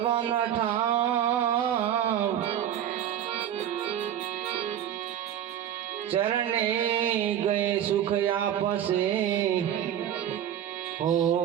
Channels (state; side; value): quieter; left; 10.5 dB